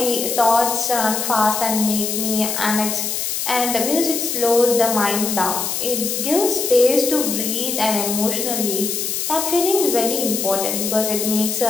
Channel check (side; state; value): left; noise; hiss, 2 dB below the sound